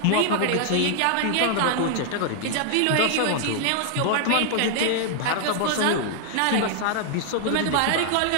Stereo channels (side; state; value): both; different; correlation 0.00